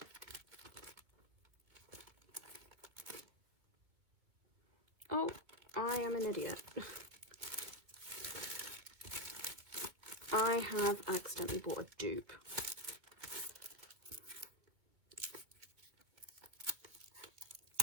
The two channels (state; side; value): late; left; 2.4 ms